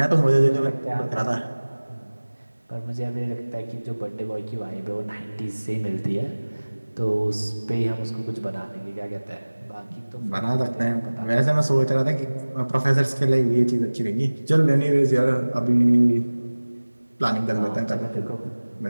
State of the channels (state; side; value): inverted; both; correlation -1.00